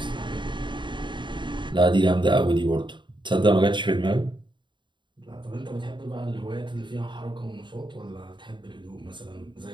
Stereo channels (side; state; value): left; late; 0.23 ms